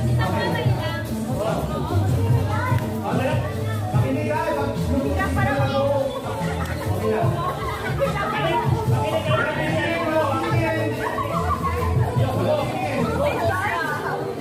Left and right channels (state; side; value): identical; both; correlation 1.00